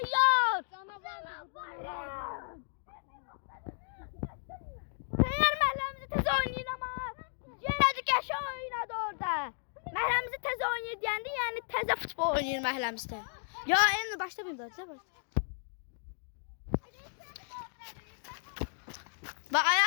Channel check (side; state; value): right; silent; digital silence